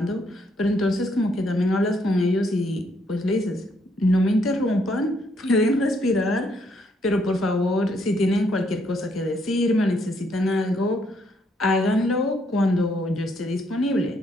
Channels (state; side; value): normal; both; correlation 0.72